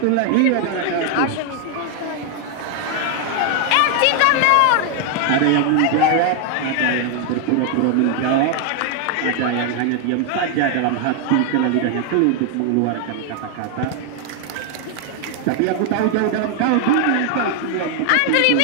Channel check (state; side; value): different; both; correlation 0.00